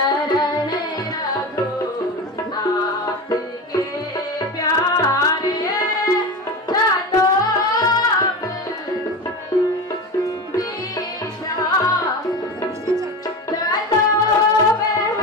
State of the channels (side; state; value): both; normal; correlation 0.25